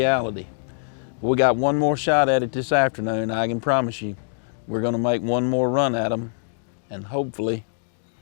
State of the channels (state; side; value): silent; right; digital silence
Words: We got one more shot at it this afternoon. I can promise you, we're gonna make one more run at them, and hopefully